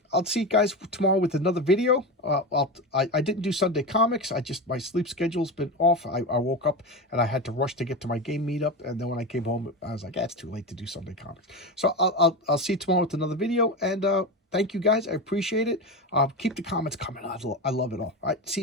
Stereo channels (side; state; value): both; normal; correlation 0.21